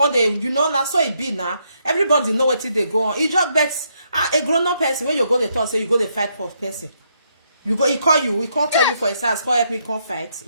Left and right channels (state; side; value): inverted; both; correlation -0.76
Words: them, you know, that's so it be now. Everybody know what they go on. It just bets a grown-up person when you go to talk, say you go to fight for person. You go, he call you, he can't tell you for his house, call help me come fight.